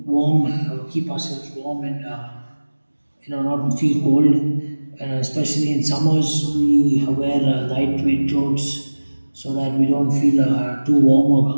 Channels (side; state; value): both; inverted; correlation -1.00